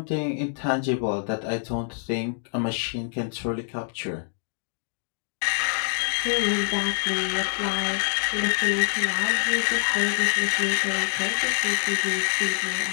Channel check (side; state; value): right; silent; digital silence